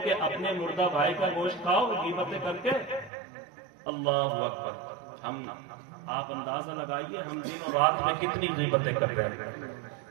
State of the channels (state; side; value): drops out; left; at 3.1 s